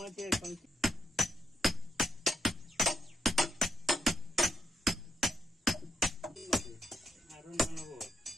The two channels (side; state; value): both; normal; correlation 0.82